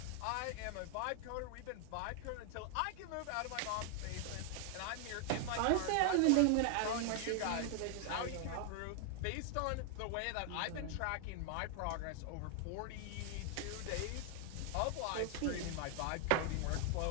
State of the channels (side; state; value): both; different; correlation 0.00